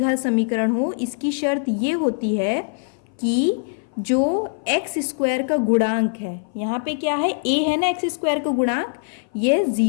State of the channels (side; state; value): right; silent; 59 dB below the other